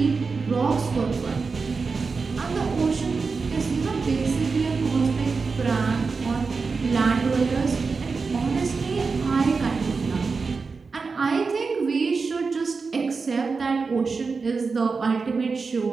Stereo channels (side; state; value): left; quieter; 4.6 dB